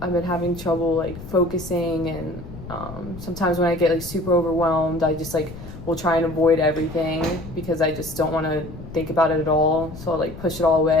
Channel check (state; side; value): noise; left; rumble, 13 dB below the sound